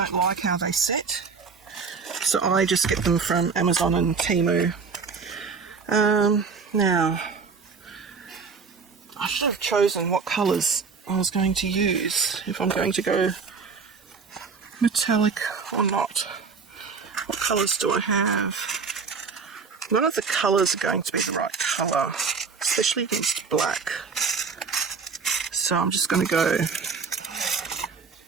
like how they sit, so I just get them from Amazon and Temu. Now, I should have chosen what colours I was going to use, if I'm going to go metallic or not. What colours do I have? None of the colours are going to be the right colour, especially against black. So I'm just going to go a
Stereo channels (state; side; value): quieter; left; 5.2 dB